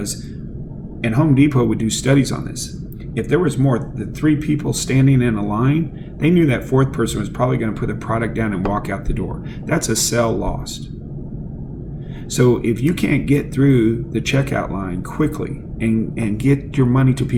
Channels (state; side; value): identical; both; correlation 1.00